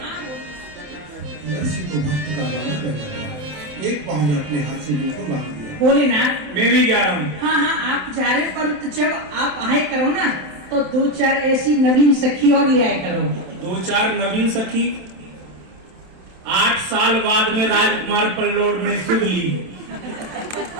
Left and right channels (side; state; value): left; late; 27 ms